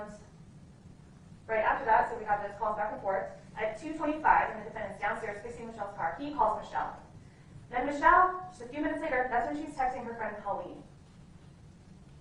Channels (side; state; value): both; identical; correlation 1.00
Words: after that, so we have those calls back and forth. At 2:25, and the defendant's downstairs fixing Michelle's car, he calls Michelle. Then Michelle, just a few minutes later, that's when she's texting her friend Colleen.